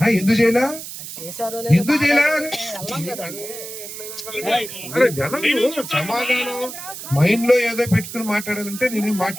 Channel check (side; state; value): right; noise; hiss, 10 dB below the sound